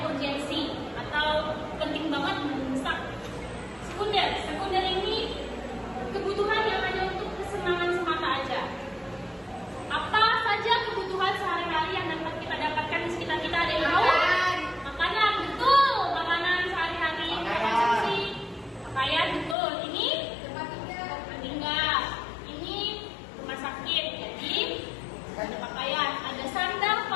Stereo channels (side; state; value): right; drops out; at 19.6 s